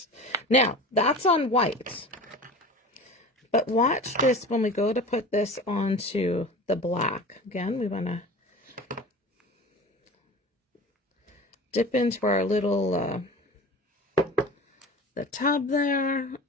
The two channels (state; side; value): normal; both; correlation 0.36